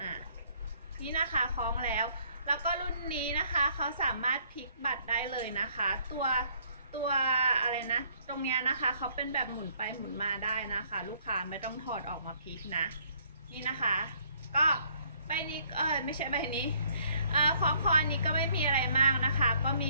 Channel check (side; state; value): both; inverted; correlation -0.63